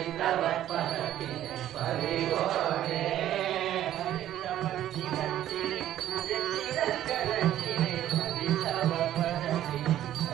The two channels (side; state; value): left; quieter; 12.3 dB